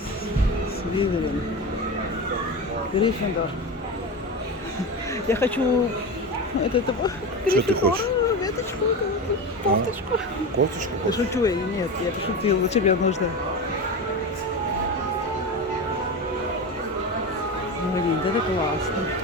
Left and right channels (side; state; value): both; normal; correlation 0.23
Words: Сливерин. Гриффиндор. Я хочу Что ты хочешь? веточку, кофточку. Кофточку Да хочешь? шучу я, нет, я пошутила, зачем мне нужно? Блин, это классно.